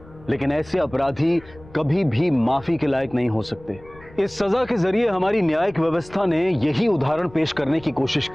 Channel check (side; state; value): left; noise; rumble, 22 dB below the sound